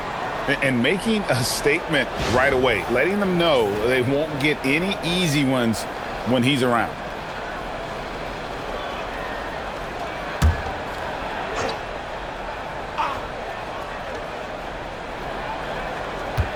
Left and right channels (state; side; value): identical; both; correlation 1.00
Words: And making a statement right away, letting them know they won't get any easy ones when he's around.